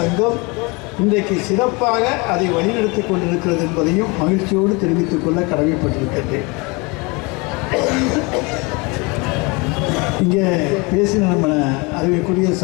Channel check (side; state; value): right; quieter; 27.9 dB